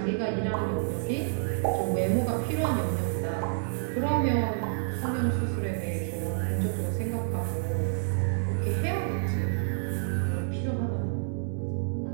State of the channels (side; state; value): left; silent; 59 dB below the other